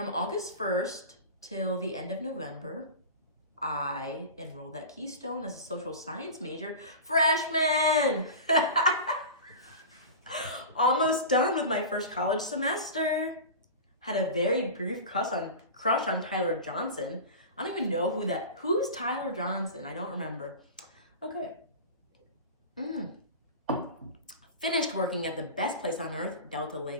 August 1st till the end of November, I enrolled at Keystone as a social science major. Freshman! Almost done with my first college semester. Had a very brief crush on Tyler Johnson. I don't even know who's Tyler Johnson? I don't remember. Okay. Finished working at the best place on earth, Delta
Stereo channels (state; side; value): inverted; both; correlation -0.31